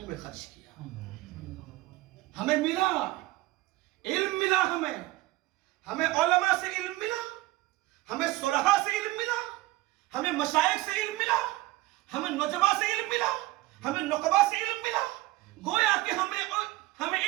میں خرچ کیا۔ ہمیں ملا علم، ملا ہمیں علماء سے علم ملا، ہمیں صلحاء سے علم ملا، ہمیں مشائخ سے علم ملا، ہمیں نجبا سے علم ملا، ہمیں نقبا سے علم ملا۔ گویا کہ ہمیں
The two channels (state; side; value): quieter; left; 18.8 dB